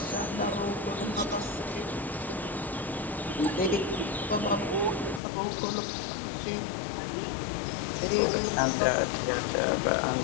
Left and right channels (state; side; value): drops out; right; at 5.2 s